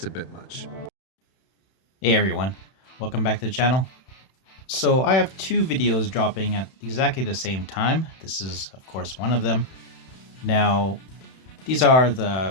a bit much. Hey everyone, welcome back to the channel. So I have two videos dropping at exactly the same time. This is of course one of them. Now these are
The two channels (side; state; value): right; late; 31 ms